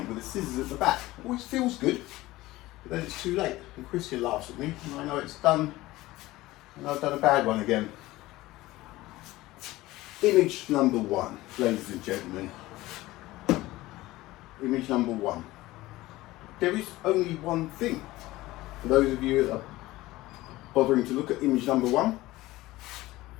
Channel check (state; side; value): quieter; right; 18.0 dB